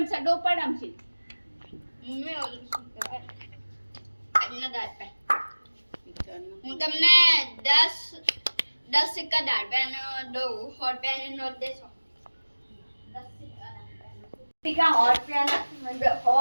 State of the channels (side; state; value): both; inverted; correlation -1.00